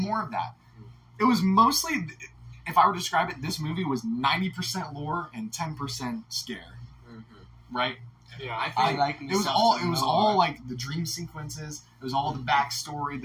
of that. It was mostly, if I were to describe it, this movie was 90% lore and 10% scare, right? Yeah, I I- like It was all the dream sequences. It was all the backstory,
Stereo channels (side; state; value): both; identical; correlation 1.00